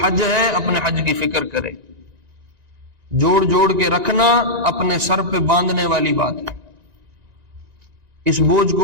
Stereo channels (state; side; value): late; left; 1.9 ms